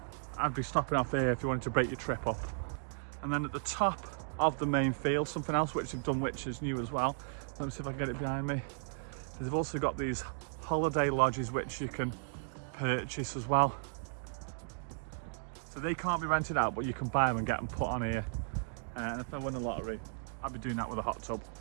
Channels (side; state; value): left; silent; digital silence